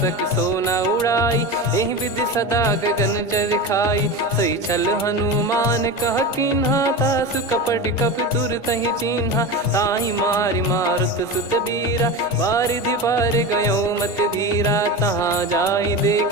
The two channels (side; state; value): both; normal; correlation 0.24